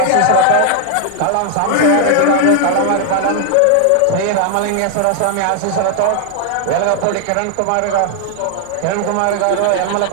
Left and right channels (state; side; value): different; both; correlation 0.00